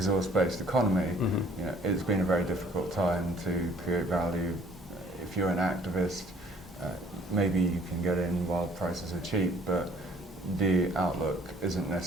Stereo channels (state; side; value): normal; both; correlation 0.58